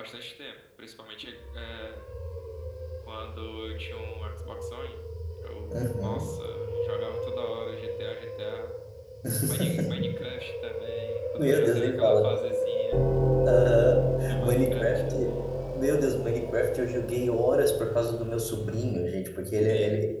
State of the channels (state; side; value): identical; both; correlation 1.00